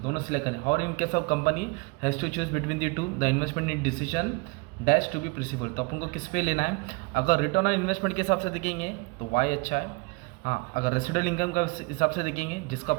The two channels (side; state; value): left; quieter; 27.5 dB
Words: दोनों सिलेक्ट करें। और in case of company has to choose between the two, the investment in decision dash to be possible. तो अपन को किस पे लेना है, अगर रिटर्न ऑन इन्वेस्टमेंट के हिसाब से देखेंगे तो वाई अच्छा है। हाँ, अगर रेसिडुअल इनकम का हिसाब से देखेंगे जिसका